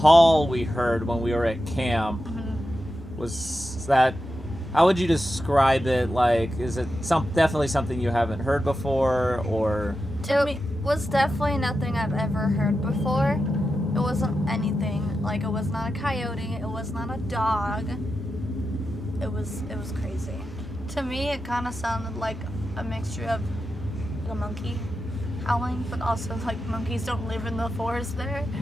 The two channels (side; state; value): both; normal; correlation 0.90